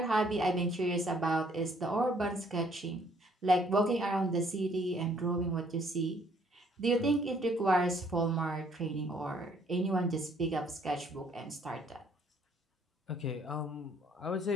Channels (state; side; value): normal; both; correlation 0.63